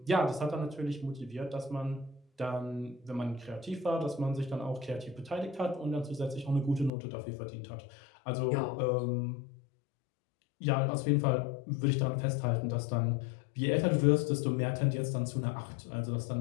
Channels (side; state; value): right; drops out; at 6.9 s